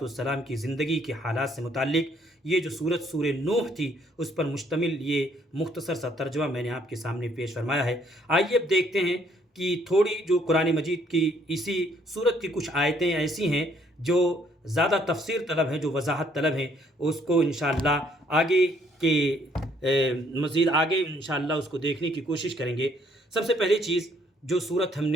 کی زندگی کے حالات سے متعلق یہ جو سورہ نوح تھی اس پر مشتمل یہ مختصر سا ترجمہ میں نے آپ کے سامنے پیش فرمایا ہے۔ آئیے اب دیکھتے ہیں کہ تھوڑی جو قرآن مجید کی اسی سورت کی کچھ آیتیں ایسی ہیں جو زیادہ تفسیر طلب ہیں، جو وضاحت طلب ہیں، اس کو انشاءاللہ مزید آگے انشاءاللہ اس کو دیکھنے کی کوشش کریں گے۔ سب سے پہلی چیز جو سورت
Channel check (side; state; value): both; normal; correlation 0.65